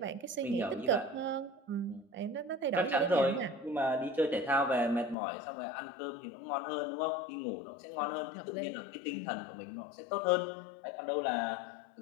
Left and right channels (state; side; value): drops out; right; at 5.2 s